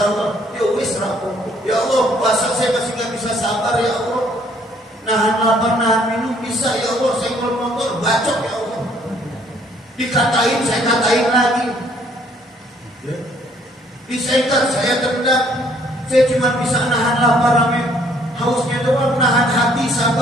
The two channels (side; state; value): both; normal; correlation 0.63